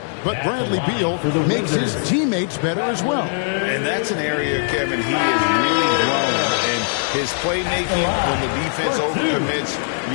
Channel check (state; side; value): silent; right; 56 dB below the other